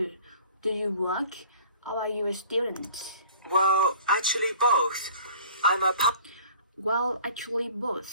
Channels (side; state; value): both; inverted; correlation -0.49